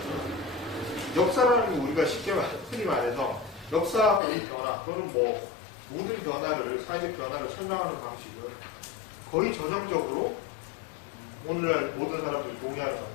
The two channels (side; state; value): right; drops out; at 4.2 s